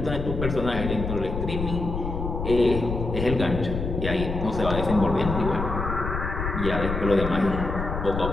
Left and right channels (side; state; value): left; noise; rumble, 4 dB below the sound